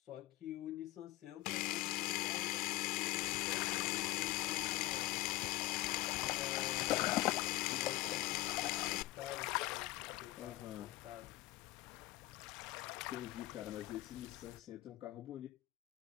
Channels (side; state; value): right; quieter; 17.4 dB